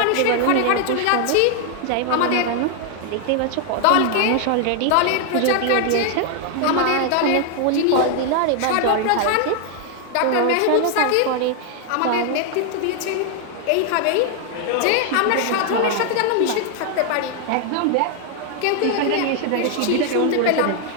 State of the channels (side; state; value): both; different; correlation 0.00